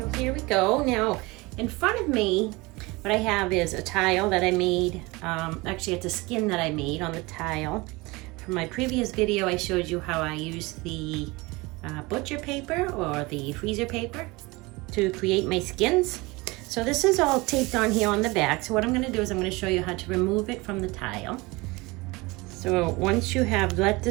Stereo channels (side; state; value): left; quieter; 23.6 dB